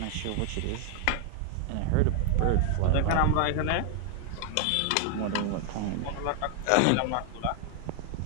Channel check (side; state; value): both; different; correlation 0.00